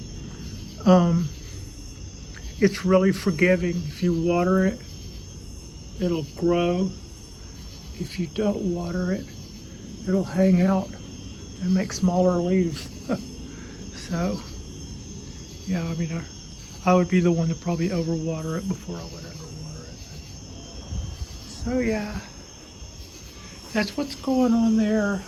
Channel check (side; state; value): both; identical; correlation 1.00